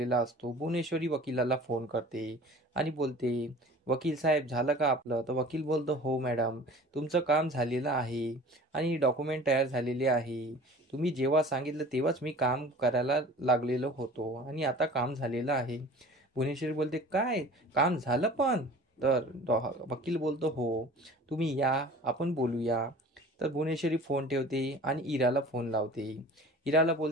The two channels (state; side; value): normal; both; correlation 0.43